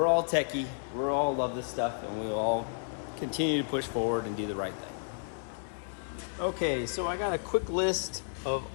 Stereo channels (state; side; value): silent; right; 57 dB below the other